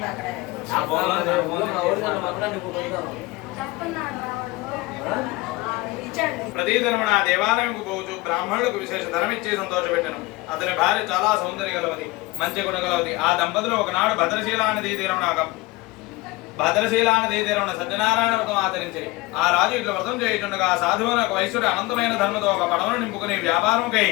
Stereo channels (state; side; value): quieter; right; 20.9 dB